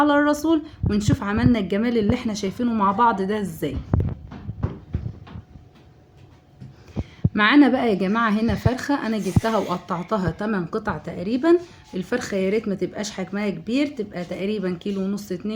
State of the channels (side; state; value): both; identical; correlation 1.00